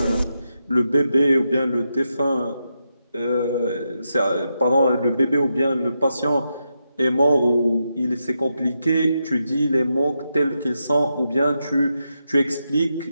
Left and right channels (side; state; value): both; inverted; correlation -0.86